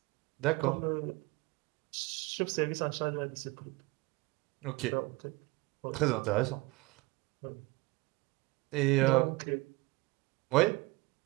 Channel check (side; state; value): left; quieter; 22.3 dB